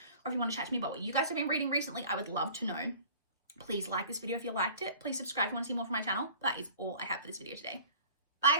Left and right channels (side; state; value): both; inverted; correlation -0.46